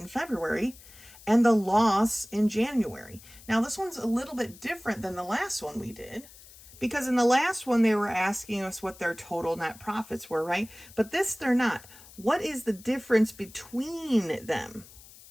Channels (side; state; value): left; noise; hiss, 21 dB below the sound